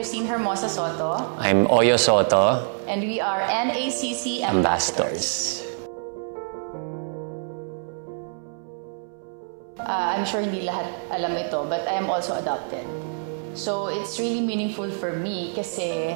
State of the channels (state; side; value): silent; left; 61 dB below the other